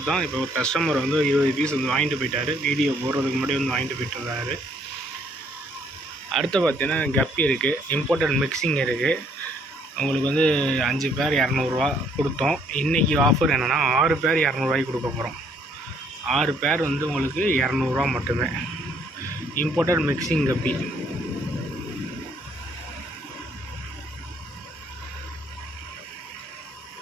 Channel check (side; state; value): both; normal; correlation 0.66